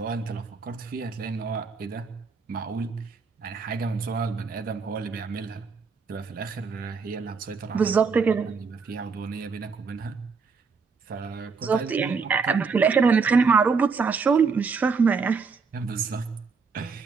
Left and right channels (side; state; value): left; quieter; 5.1 dB